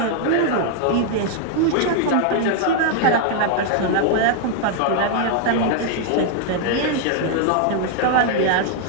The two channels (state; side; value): different; both; correlation 0.00